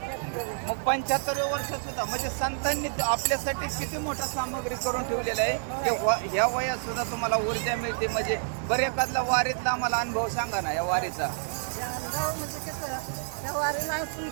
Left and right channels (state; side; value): silent; left; 59 dB below the other